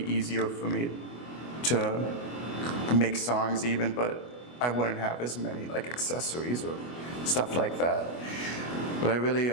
easier for me to make songs even, but I wouldn't have as many like accessories or stuff like that. But I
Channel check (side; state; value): right; late; 25 ms